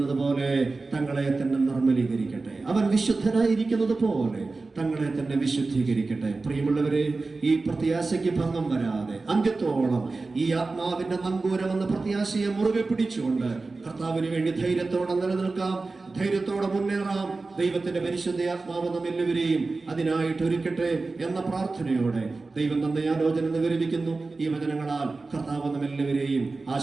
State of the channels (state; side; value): quieter; left; 3.7 dB